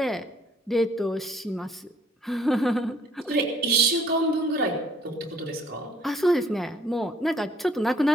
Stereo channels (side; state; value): both; normal; correlation 0.61